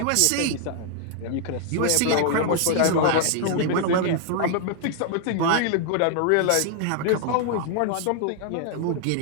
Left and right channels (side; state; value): both; different; correlation 0.00